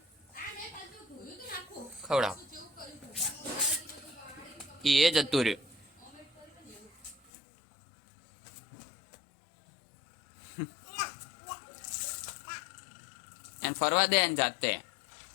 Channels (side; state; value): right; drops out; at 7.3 s